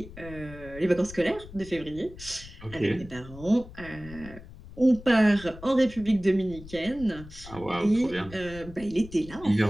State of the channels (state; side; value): noise; left; rumble, 16 dB below the sound